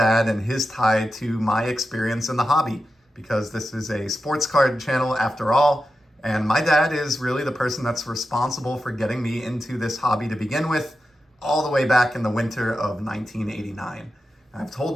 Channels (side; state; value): both; normal; correlation 0.90